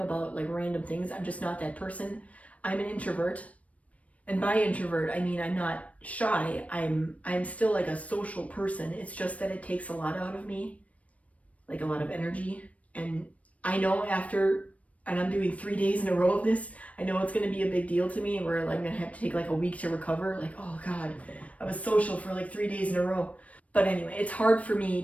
like random things. I'm just not that person. I'm an introvert. And by introvert, I mean I'm not shy. I'm still like a social person. It's just that it takes a lot out of me, like a lot of energy. And I know and I'm doing 3 days in a row of this, I know it's going to be a big deal to me where I'm going to have to take like a week to recover. Like, oh God, I was social for like 3 days in a row. But anyway, it's hard for me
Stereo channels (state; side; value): late; right; 0.066 ms